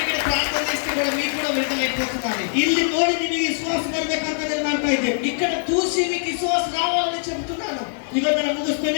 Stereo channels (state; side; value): silent; right; digital silence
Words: ప్రార్థన చేస్తే కూడా మీకు కూడా విడుదలైపోతున్నారు. ಇಲ್ಲಿ ನೋಡಿ ನಿಮಗೆ ವಿಶ್ವಾಸ ಬರ್ಬೇಕಂತ నేను ಮಾಡ್ತಾ ಇದ್ದೆ. ఇక్కడ చూసి మీకు విశ్వాసం రావాలని చెబుతున్నాను. ಇವತ್ತು ನಾನು